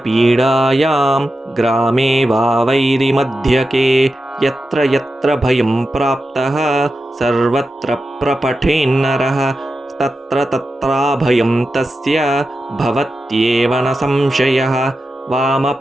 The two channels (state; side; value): normal; both; correlation 0.90